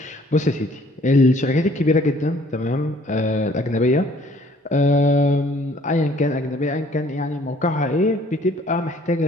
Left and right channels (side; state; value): both; normal; correlation 0.58